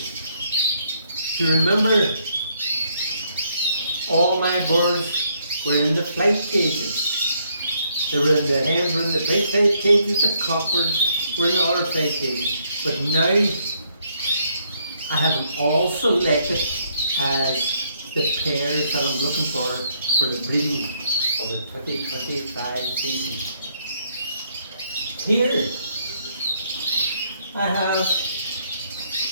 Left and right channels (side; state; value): both; inverted; correlation -0.71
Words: Do you remember all my birds were in the flight cages? They were in the hens were in the big flight cages, the cockbirds were in the other flight cages. But now I have them all selected as the pairs that I'm looking for the breeding of the 2025 season. Here I have